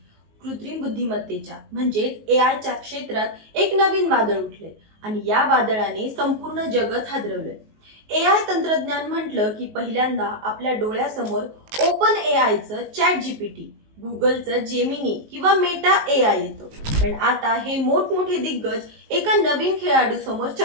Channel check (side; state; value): left; late; 19 ms